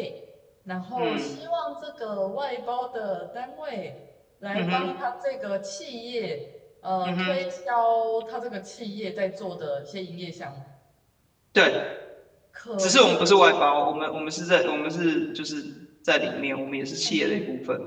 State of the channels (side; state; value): both; identical; correlation 1.00